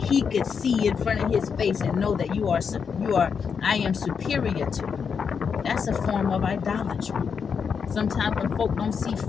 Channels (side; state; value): right; quieter; 6.3 dB